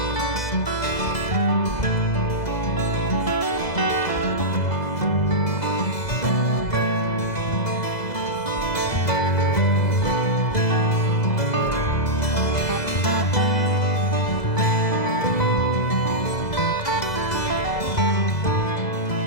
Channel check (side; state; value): right; late; 2.0 ms